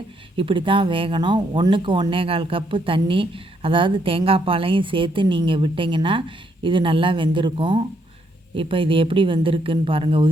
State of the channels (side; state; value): both; normal; correlation 0.73